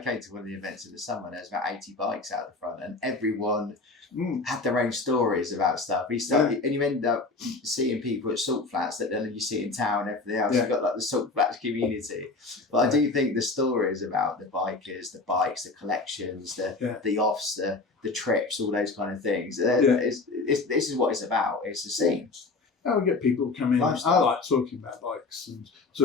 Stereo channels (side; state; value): right; quieter; 3.7 dB